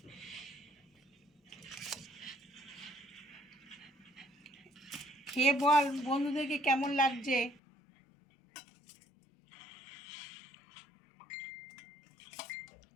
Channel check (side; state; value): right; drops out; at 7.6 s